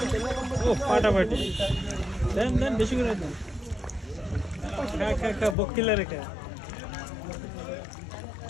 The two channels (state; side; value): drops out; right; at 5.6 s